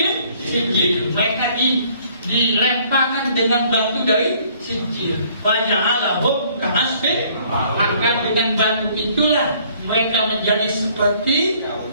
sijil. Mereka dilemparkan dengan batu dari sijil. Faja'alahum ka'asfin. Maka dengan batu itulah mereka menjadi seperti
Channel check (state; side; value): inverted; both; correlation -0.60